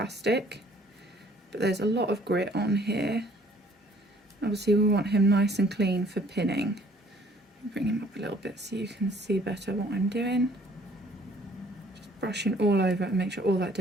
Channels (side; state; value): both; normal; correlation 0.58